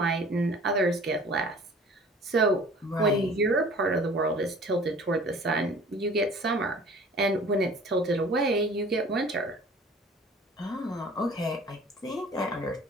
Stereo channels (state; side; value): normal; both; correlation 0.47